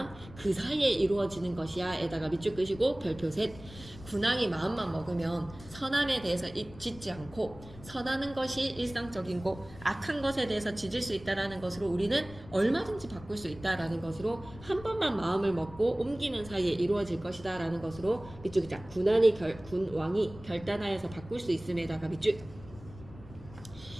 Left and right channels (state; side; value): noise; left; rumble, 17 dB below the sound